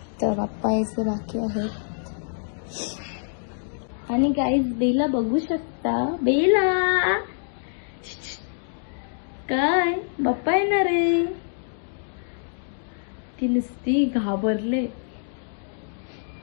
बाप्पा यायचे बाकी आहेत. आणि गाईज बेला बघू शकता. बेला काय बाप्पा येणार आहे. ती नुसती घाबरले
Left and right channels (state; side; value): silent; right; digital silence